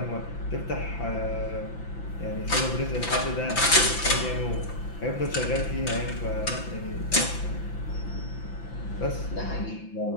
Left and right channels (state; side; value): late; right; 5.9 ms